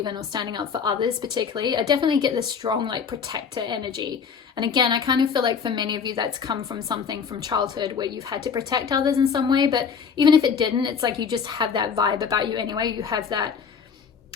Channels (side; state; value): right; quieter; 6.4 dB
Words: in or standing up for others particularly. I definitely get this strong like protector energy. And again, I kind of feel like for many of you that's come from something from childhood where you've had to protect others in some way. But even if it didn't, it's like you just have that vibe about you anyway. You have that